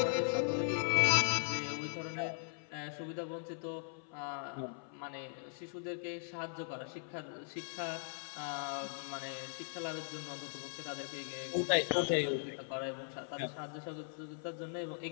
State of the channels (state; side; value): silent; right; 52 dB below the other